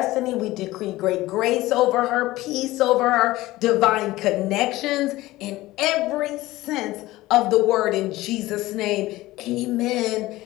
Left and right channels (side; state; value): right; quieter; 17.9 dB